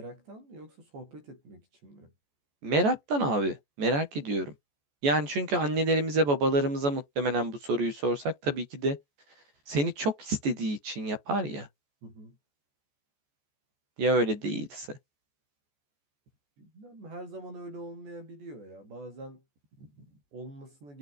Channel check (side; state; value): left; late; 14 ms